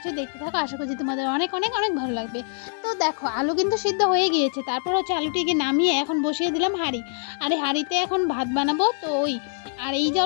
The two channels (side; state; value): right; silent; 62 dB below the other